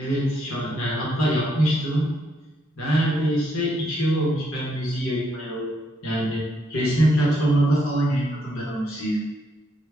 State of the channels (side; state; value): both; normal; correlation 0.75